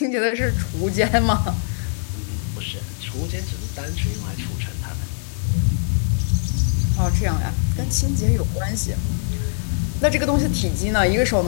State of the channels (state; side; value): silent; right; digital silence